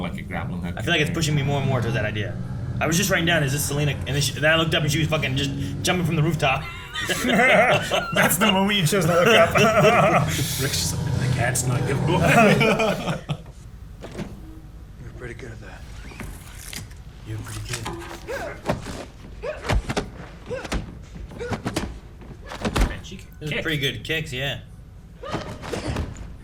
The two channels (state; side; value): identical; both; correlation 1.00